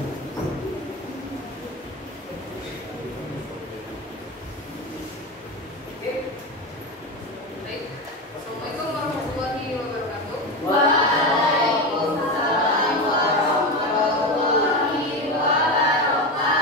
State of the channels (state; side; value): normal; both; correlation 0.19